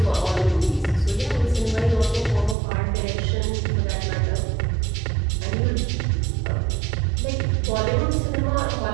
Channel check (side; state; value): left; drops out; at 2.6 s